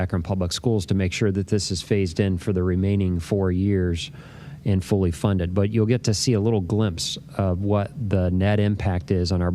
Public Schools, to make sure that this is phased in for the remaining 4 years and fully funded. But you'll get to see a little glimpse of what the net impact is on our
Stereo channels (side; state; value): both; identical; correlation 1.00